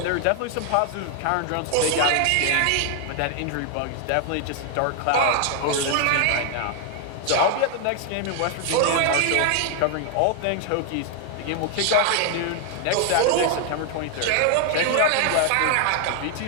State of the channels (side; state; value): both; different; correlation 0.00